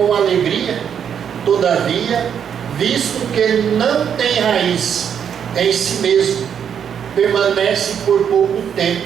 alegria, todavia, visto que não tem raiz em si mesmo, permanece por pouco tempo.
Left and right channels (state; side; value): quieter; left; 8.1 dB